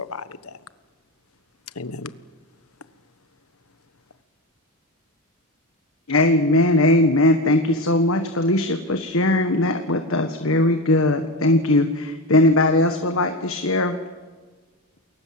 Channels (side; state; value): both; normal; correlation 0.20